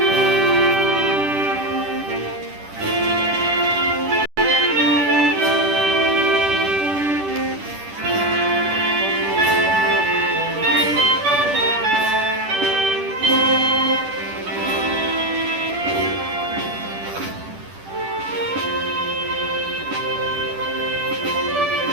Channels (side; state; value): left; late; 10 ms